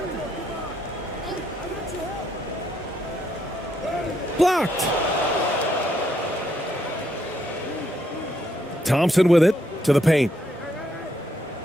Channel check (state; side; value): normal; both; correlation 0.75